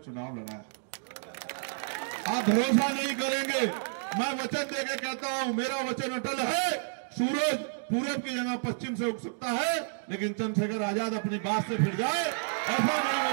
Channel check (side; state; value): left; silent; digital silence